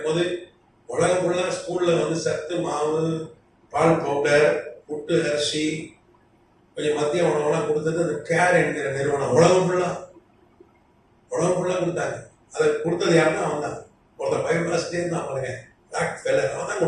உலகம் ஃபுல்லாக ஸ்கூல்ல வந்து சத்து மாவு, பால் பவுடர், புட்டு அரிசி, கொஞ்சம் மத்திய உணவுலாம் கொடுத்தது அந்த கேர் என்கிற நிறுவனம். உலகம் ஃபுல்லா கொடுத்தாங்க. அதை கொடுத்தது யாருன்னா அவன் தான். ஒருத்தர் பைபிள் வாசிட்டே இருந்தான் பாருங்க, ராக்ஃபெல்லர், அவன் தான்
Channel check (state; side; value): identical; both; correlation 1.00